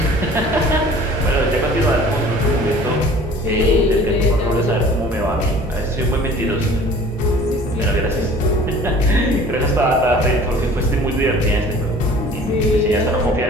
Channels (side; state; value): both; normal; correlation 0.48